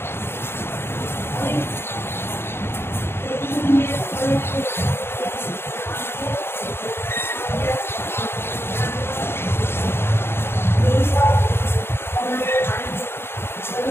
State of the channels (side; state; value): right; late; 0.11 ms